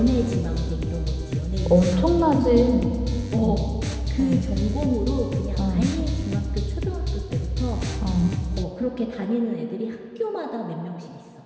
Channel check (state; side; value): identical; both; correlation 1.00